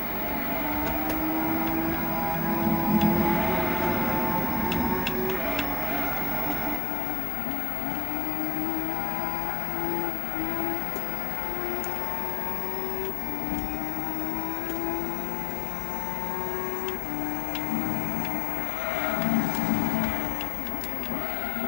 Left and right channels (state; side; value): drops out; right; at 6.8 s